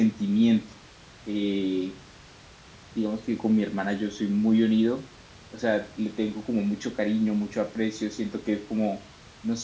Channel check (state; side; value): identical; both; correlation 1.00